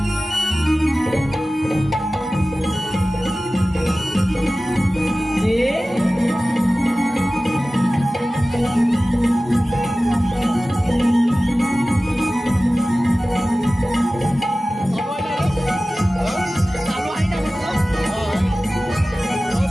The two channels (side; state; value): both; normal; correlation 0.96